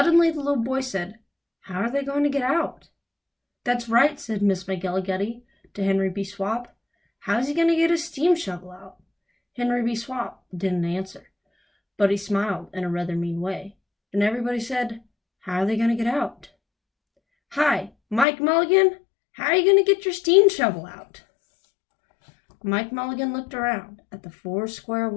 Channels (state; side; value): drops out; right; at 18.2 s